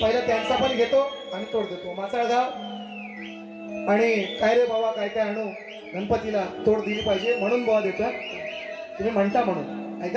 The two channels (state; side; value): identical; both; correlation 1.00